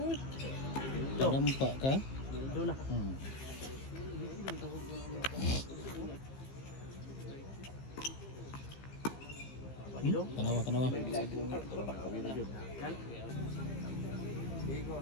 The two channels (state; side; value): late; right; 15 ms